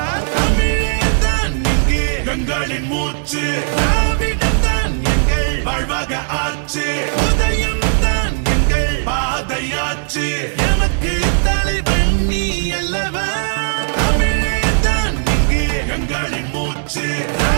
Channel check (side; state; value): left; silent; digital silence